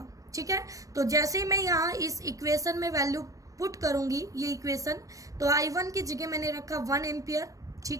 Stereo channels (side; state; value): left; late; 0.16 ms